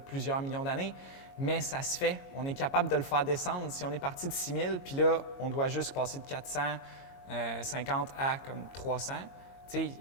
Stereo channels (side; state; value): right; late; 22 ms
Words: millions d'années, mais ça se fait. On est capable de le faire descendre. Si on est parti de 6000, puis là, on doit juste passer de 450 à comme 300, tu sais,